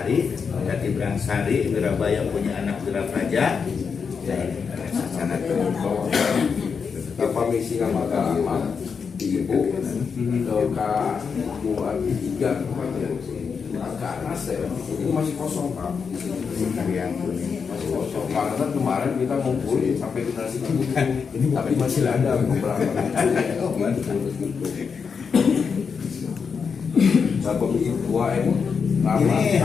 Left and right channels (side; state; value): right; quieter; 5.9 dB